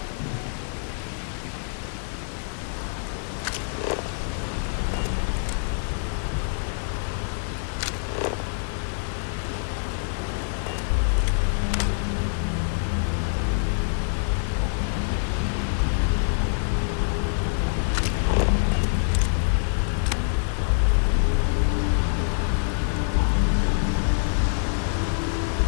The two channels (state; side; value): silent; right; digital silence